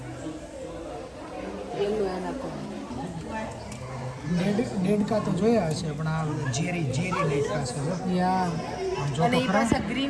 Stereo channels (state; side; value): identical; both; correlation 1.00